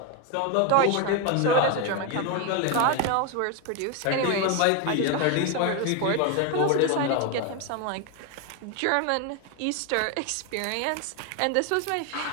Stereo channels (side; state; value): both; different; correlation 0.01